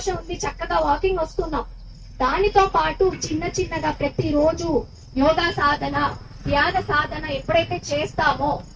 ఉంది, చక్కగా వాకింగ్ వస్తున్నాం. దానితో పాటు చిన్నగా ప్రతి రోజు యోగా సాధన, ధ్యాన సాధన ఎప్పుడైతే చేస్తామో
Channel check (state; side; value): identical; both; correlation 1.00